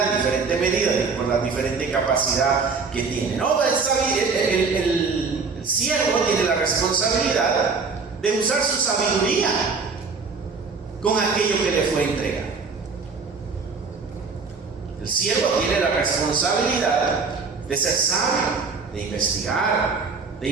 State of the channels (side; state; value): left; quieter; 4.7 dB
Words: en diferente medida, por la diferente capacidad que tiene, ¿no? El siervo tiene la responsabilidad de usar su sabiduría con aquello que le fue entregado. El siervo tiene la responsabilidad de ser sabio, de investigar, de